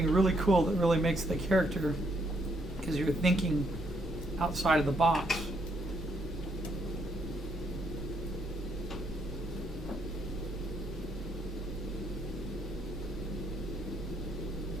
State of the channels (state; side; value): normal; both; correlation 0.73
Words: really cool that really makes the character, because you're thinking outside of the box.